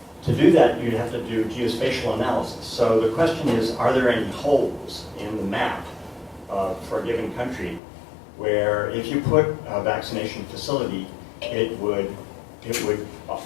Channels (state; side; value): drops out; right; at 7.8 s